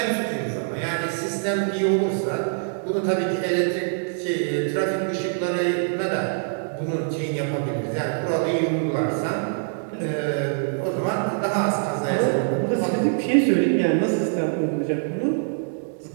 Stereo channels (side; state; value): left; silent; digital silence